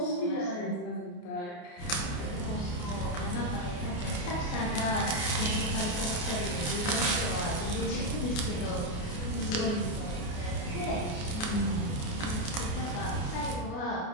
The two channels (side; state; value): right; late; 28 ms